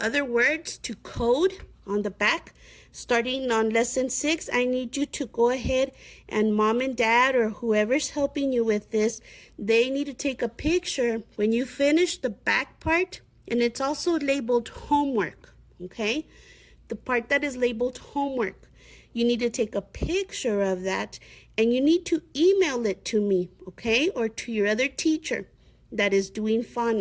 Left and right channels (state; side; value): identical; both; correlation 1.00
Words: words to code on the back. Starting on lesson 6, I need you to go ahead and mom and dad or whoever's helping you with this, they need to take a picture when you finish the back part, and it's also labeled homework, okay? The part that is labeled homework. You need to take a picture of that and you need to email it to me, okay? Or to your other teacher that is doing